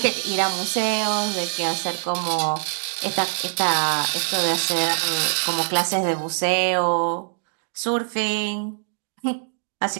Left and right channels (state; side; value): silent; left; digital silence